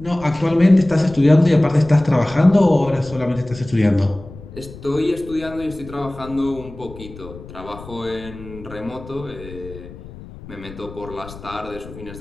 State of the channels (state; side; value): noise; left; rumble, 16 dB below the sound